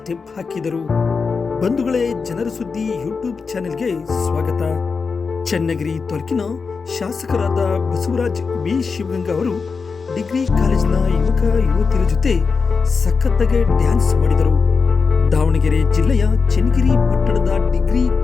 ಹಾಕಿದರು. ಬಂಧುಗಳೇ, ಜನರ ಸುದ್ದಿ ಯೂಟ್ಯೂಬ್ ಚಾನೆಲ್ಗೆ ಸ್ವಾಗತ. ಚನ್ನಗಿರಿ ತಾಲೂಕಿನ ಶಾಸಕರಾದ ಬಸವರಾಜ್ ವಿ ಶಿವಂಗ ಅವರು ಡಿಗ್ರಿ ಕಾಲೇಜಿನ ಯುವಕ ಯುವತಿಯರ ಜೊತೆ ಸಖತ್ತಾಗಿ ಡ್ಯಾನ್ಸ್ ಮಾಡಿದರು. ದಾವಣಗೆರೆ ಜಿಲ್ಲೆಯ ಚನ್ನಗಿರಿ ಪಟ್ಟಣದ ಡಿಗ್ರಿ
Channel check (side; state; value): right; quieter; 5.0 dB